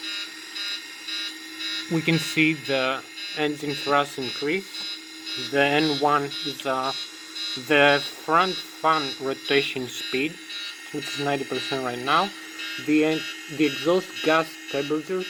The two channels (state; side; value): identical; both; correlation 1.00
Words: We can see the engine thrust increase. The N1 is the front fan rotation speed, which is 90% right now. The exhaust gas temperature